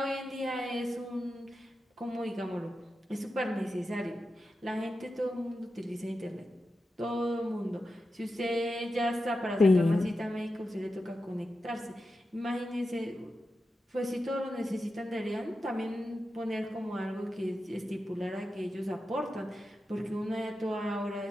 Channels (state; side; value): normal; both; correlation 0.90